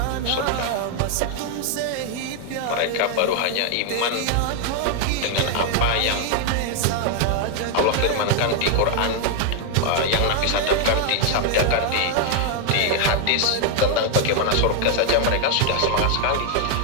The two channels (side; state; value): both; different; correlation 0.00